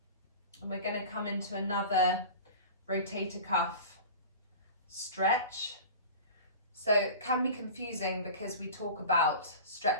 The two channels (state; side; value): inverted; both; correlation -0.35